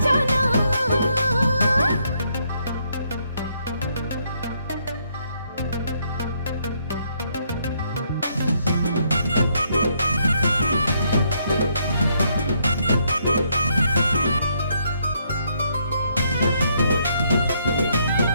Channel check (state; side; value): inverted; both; correlation -0.73